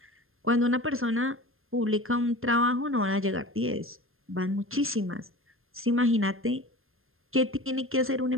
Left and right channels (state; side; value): late; left; 0.60 ms